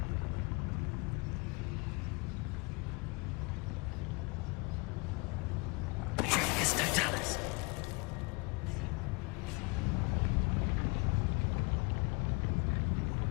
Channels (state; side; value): quieter; right; 29.3 dB